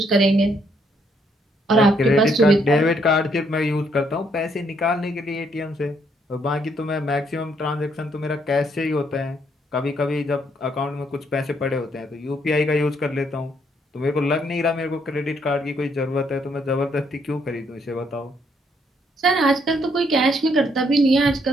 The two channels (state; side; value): normal; both; correlation 0.71